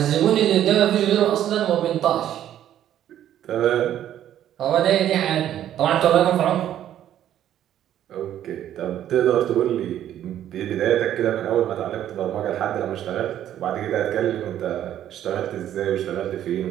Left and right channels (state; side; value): quieter; left; 11.3 dB